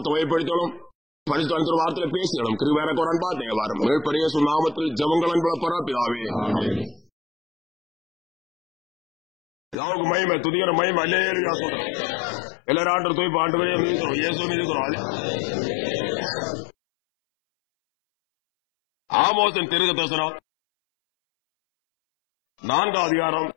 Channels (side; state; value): right; drops out; at 9.8 s